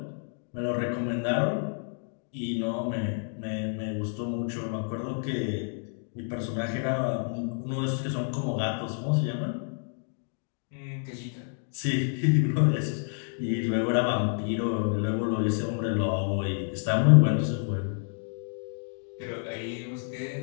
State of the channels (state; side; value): silent; right; 56 dB below the other